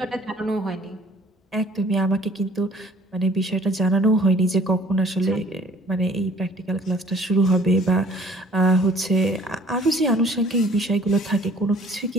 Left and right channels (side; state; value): both; normal; correlation 0.55